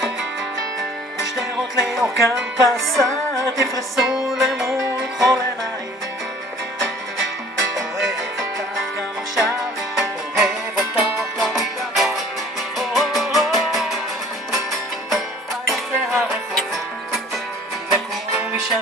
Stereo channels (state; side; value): normal; both; correlation 0.51